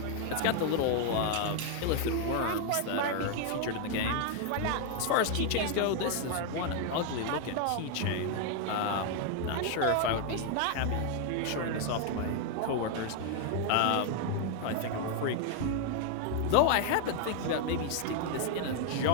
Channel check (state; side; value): different; both; correlation 0.00